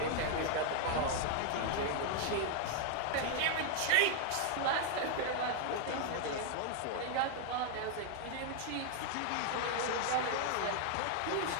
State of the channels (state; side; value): different; both; correlation 0.00